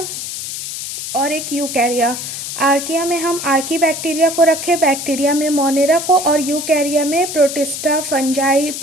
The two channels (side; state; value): left; noise; hiss, 6 dB below the sound